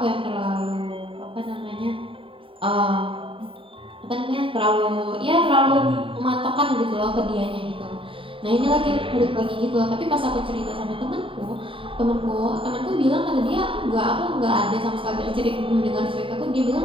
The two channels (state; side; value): late; left; 0.25 ms